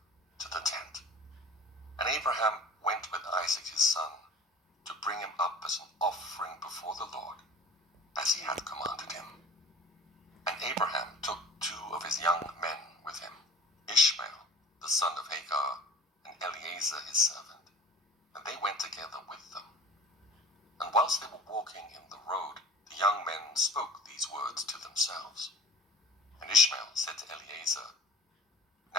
to the tent. And Abraham went with Isaac his son, to bring him up as an offering before the Lord, as he had commanded him. And Abraham took 2 of his young men with him, Ishmael, the son of Hagar, and Eliezer his servant, and they went together with them. And whilst they were walking in the road, the young men spoke these words to themselves. And Ishmael said to Eliezer,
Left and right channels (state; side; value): normal; both; correlation 0.42